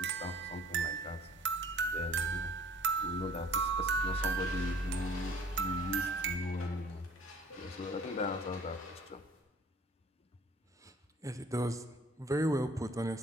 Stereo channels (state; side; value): normal; both; correlation 0.52